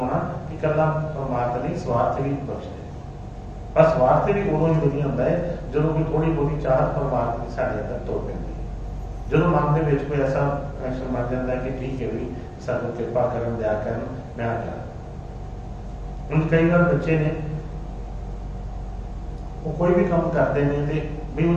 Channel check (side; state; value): both; identical; correlation 1.00